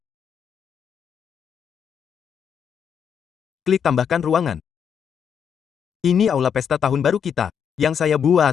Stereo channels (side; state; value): right; quieter; 7.7 dB